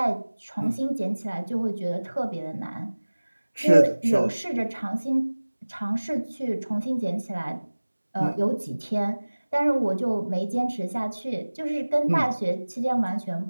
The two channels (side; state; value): both; inverted; correlation -1.00